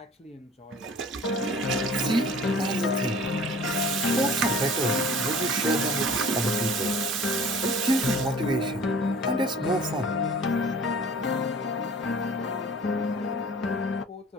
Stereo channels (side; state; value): both; normal; correlation 0.46